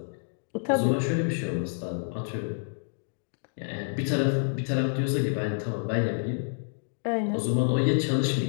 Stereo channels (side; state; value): right; silent; digital silence